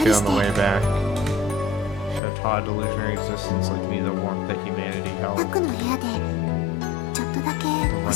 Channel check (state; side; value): drops out; right; at 2.2 s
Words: り on し the て。 way back. She had taught a delusionary existence like me the warmth that humanity タ held. クの部屋でちょっとだけ But お when